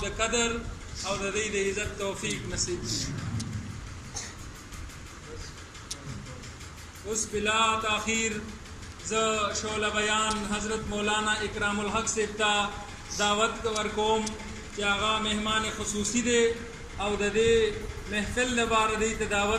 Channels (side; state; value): both; identical; correlation 1.00